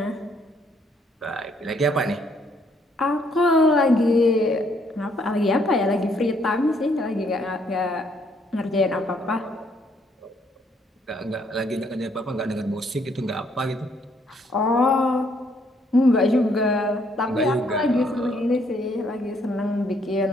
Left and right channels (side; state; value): both; normal; correlation 0.69